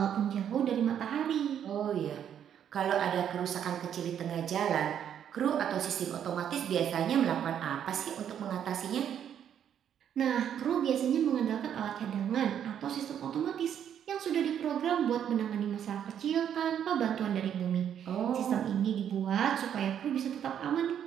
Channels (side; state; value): left; quieter; 9.2 dB